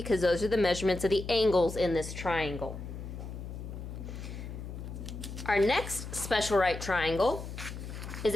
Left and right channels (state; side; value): noise; left; hum, 9 dB below the sound